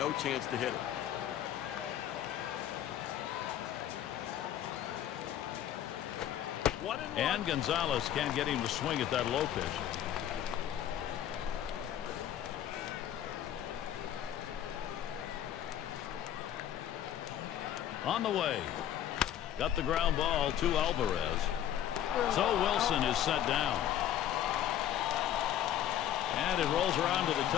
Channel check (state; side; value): quieter; right; 10.9 dB